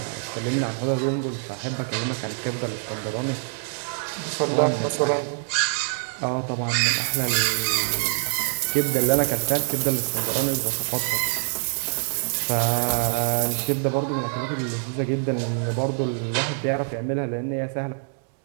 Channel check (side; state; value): left; silent; digital silence